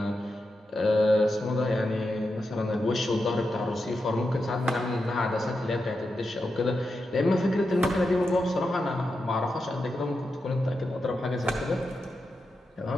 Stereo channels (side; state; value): both; normal; correlation 0.88